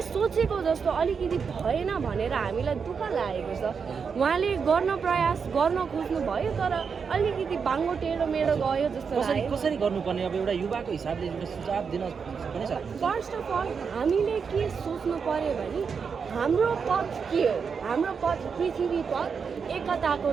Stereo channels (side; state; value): left; quieter; 6.0 dB